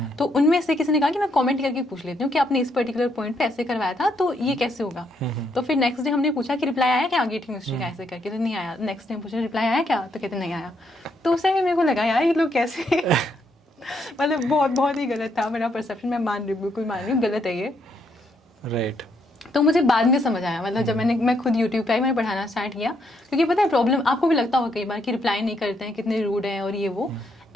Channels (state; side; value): normal; both; correlation 0.75